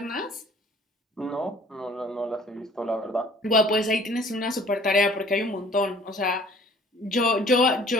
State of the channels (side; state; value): both; normal; correlation 0.53